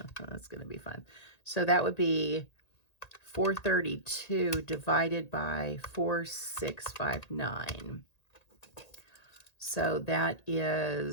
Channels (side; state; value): right; late; 1.8 ms